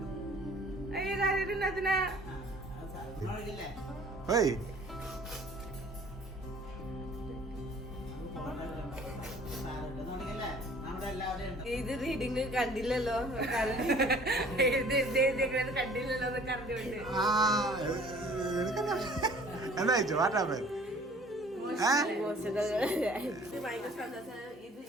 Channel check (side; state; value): both; normal; correlation 0.52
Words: ഓയ് ഇത് റീഡിങ് കണ്ടില്ലല്ലോ കണ്ടില്ലല്ലോ കറിഞ്ഞോണ്ട് എന്താ ചോദിച്ചു വാട്ടാപ്പൻ ഭയങ്കര സന്തോഷം. ഇത്